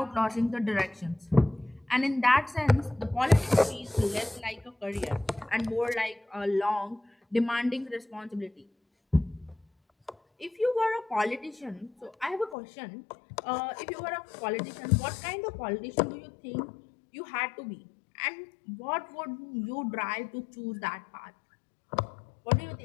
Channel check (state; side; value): drops out; right; at 12.6 s